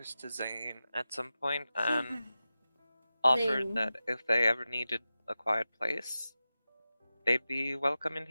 to Zane at some point and offered Zane. that if they ever needed a quiet place, they'd be welcome in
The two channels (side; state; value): both; inverted; correlation -0.94